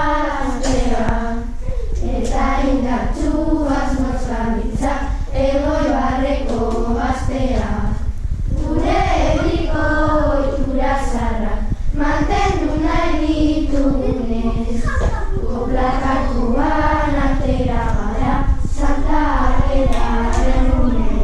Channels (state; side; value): identical; both; correlation 1.00